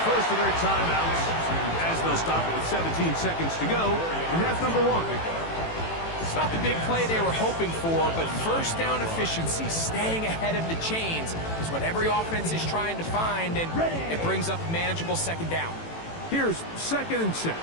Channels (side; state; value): right; late; 18 ms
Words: first of their timeouts as they'll stop it with 17 seconds to go in half number 1. It's not the big play they were hoping for, but first down efficiency, staying ahead of the chains, is what every offense is trying to find, and it brings up a manageable second down. Here's 2nd and 6.